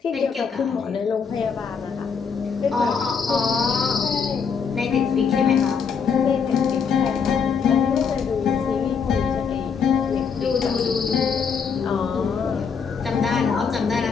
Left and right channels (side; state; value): right; quieter; 6.2 dB